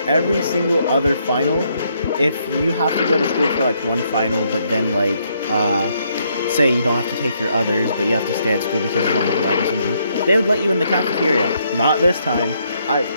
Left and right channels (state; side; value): inverted; both; correlation -0.73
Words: every single other final if you have to go to school for like one final, but then like say you don't have to take your others, but you have to stay at school because you don't have a light or something, they would let you in the cafeteria. Not this time.